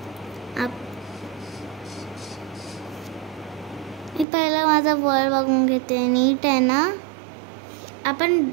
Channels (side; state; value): left; drops out; at 4.2 s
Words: मी पहिला माझा वर्ल्ड बघून घेते. नीट आहे ना.